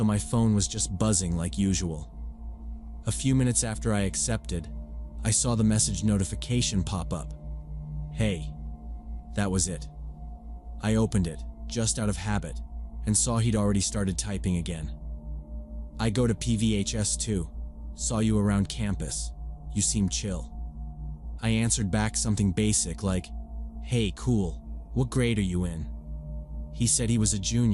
my phone was just buzzing like usual. A few minutes after I accepted, I saw the message notification pop up. Hey. That was it. I opened it, just out of habit, and saw he'd already started typing again. I go to PVHS too. Saw you around campus. You seem chill. I answered back something basic like, hey, cool. What grade are you in? He said he was a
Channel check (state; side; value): identical; both; correlation 1.00